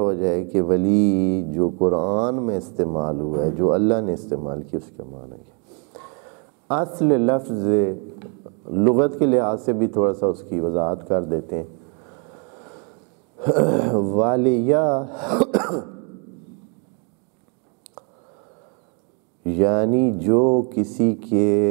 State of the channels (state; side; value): quieter; left; 37.0 dB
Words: جائے کہ ولی جو قرآن میں استعمال ہوا ہے، جو اللہ نے استعمال کیا، اس کا معنی کیا. اصل لفظ لغت کے لحاظ سے بھی تھوڑا سا اس کی وضاحت کر دیتے ہیں. والیہ یعنی جو کسی